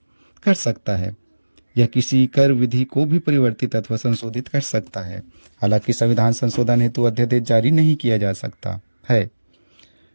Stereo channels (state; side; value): inverted; both; correlation -1.00